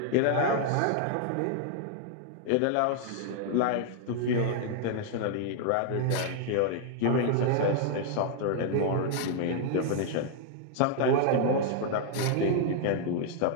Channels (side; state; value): both; different; correlation 0.00